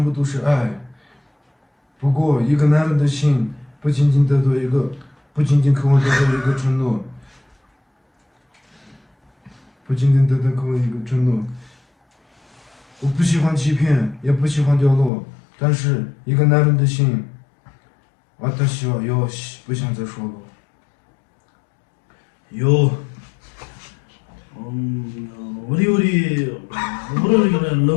部都是爱。不过，一个男人的心不仅仅渴望得到一个承诺，不仅仅得到渴望一个承诺。我不喜欢欺骗，也不喜欢掉落，但是一个男人的心，私はよし，不想再说了。요, 우리 이거는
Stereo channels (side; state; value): right; drops out; at 15.1 s